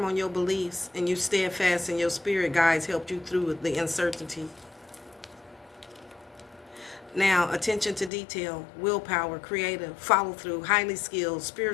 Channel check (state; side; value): drops out; right; at 8.1 s